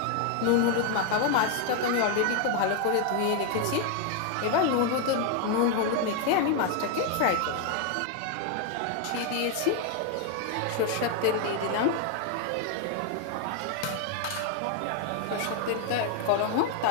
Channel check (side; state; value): both; different; correlation 0.01